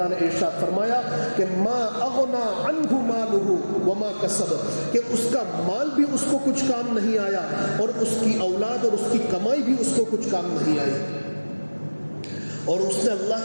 نے ارشاد فرمایا کہ ما اغنا عنہ مالہ وما کسب, کہ اس کا مال بھی اس کو کچھ کام نہیں آیا اور اس کی اولاد اور اس کی کمائی بھی اس کو کچھ کام نہیں آئی. اور اس نے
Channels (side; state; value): both; inverted; correlation -1.00